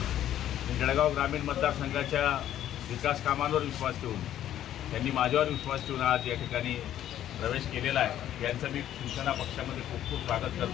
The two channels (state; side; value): quieter; right; 11.6 dB